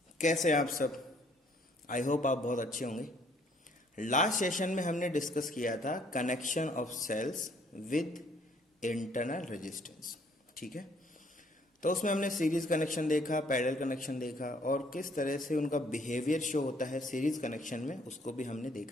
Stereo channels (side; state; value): both; normal; correlation 0.63